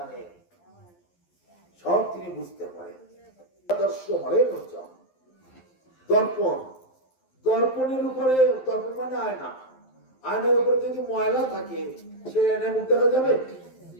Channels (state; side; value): late; right; 11 ms